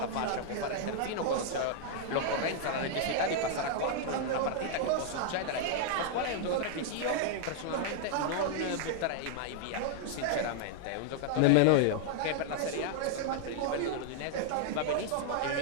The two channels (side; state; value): both; different; correlation -0.01